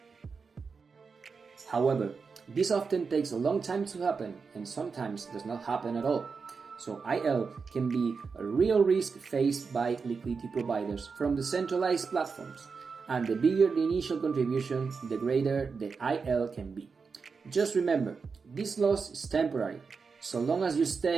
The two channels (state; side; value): quieter; left; 5.1 dB